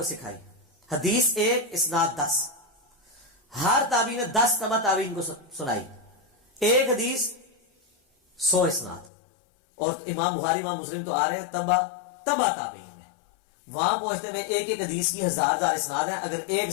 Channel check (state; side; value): drops out; right; at 9.1 s